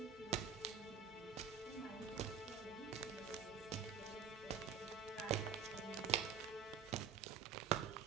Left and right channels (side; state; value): left; quieter; 6.8 dB